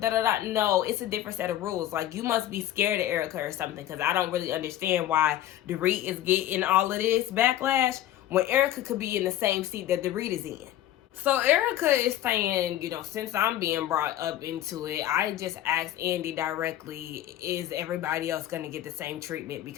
No, it's a different set of rules. Like, you must be scared of Erica or something, because I don't really understand why Dorit is getting all of this backlash when Erica could be in the same seat that Dorit is in. So Erica is saying, you know, since I'm being brought up into it, I just asked Andy directly, is everybody else going to get the same treatment?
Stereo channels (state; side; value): quieter; right; 13.0 dB